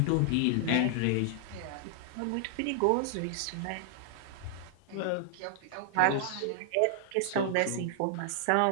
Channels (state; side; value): different; both; correlation -0.01